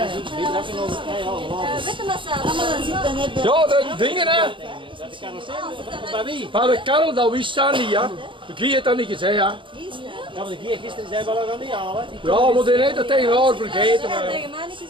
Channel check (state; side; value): late; left; 0.24 ms